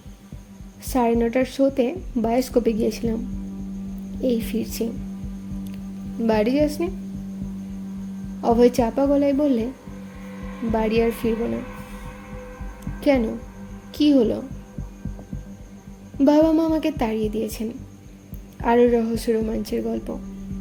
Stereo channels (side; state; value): both; identical; correlation 1.00